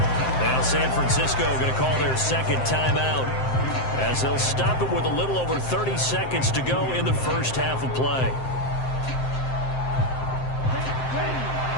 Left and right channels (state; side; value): late; right; 7.7 ms